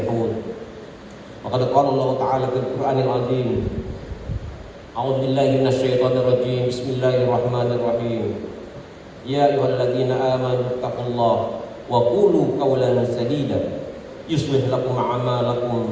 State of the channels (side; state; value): both; identical; correlation 1.00